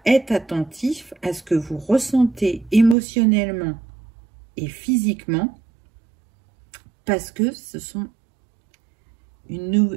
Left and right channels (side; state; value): left; drops out; at 3.0 s